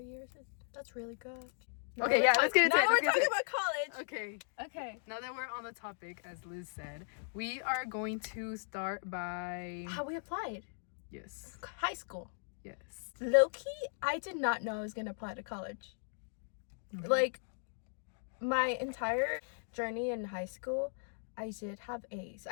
that's really good. Okay, yeah, let's get into it. Now we're talking about college. Okay. Okay. Now that we're on the topic, as Liz said, we are going to start by... How we applied. Yes. High school. Yes. Low-key, I did not know I was going to apply to college. Okay. Like, my entire journey in high school, I did have A's.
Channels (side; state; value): right; silent; digital silence